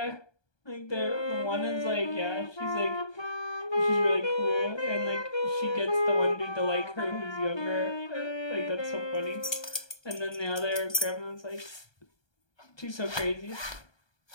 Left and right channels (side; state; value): right; late; 1.2 ms